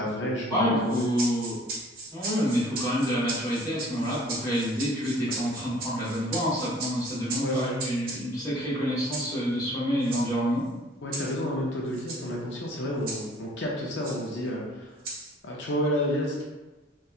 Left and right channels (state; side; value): normal; both; correlation 0.52